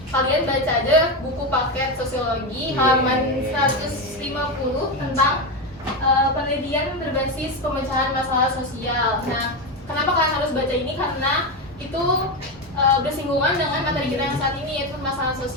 Kalian baca aja buku paket sosiologi halaman 150 tentang penelitian berbasis pemecahan masalah sosial. Nah, kenapa kalian harus baca ini? Karena itu bersinggungan dengan materi kita yang saat ini, yaitu masalah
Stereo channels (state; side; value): normal; both; correlation 0.13